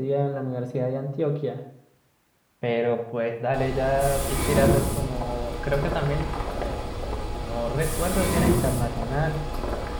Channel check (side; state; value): both; identical; correlation 1.00